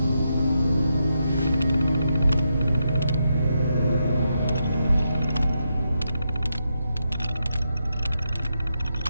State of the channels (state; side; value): inverted; both; correlation -0.83